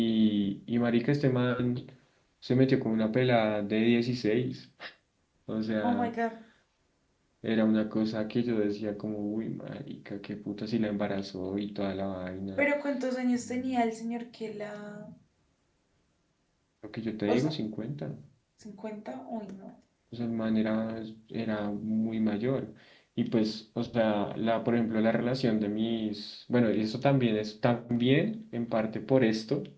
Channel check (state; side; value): identical; both; correlation 1.00